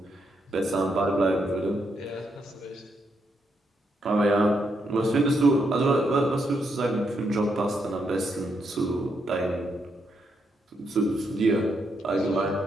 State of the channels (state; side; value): normal; both; correlation 0.79